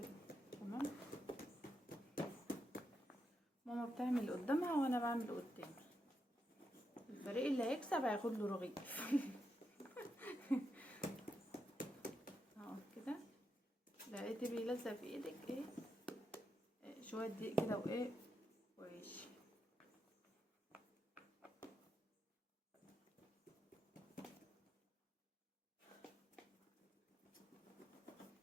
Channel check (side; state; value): both; normal; correlation 0.84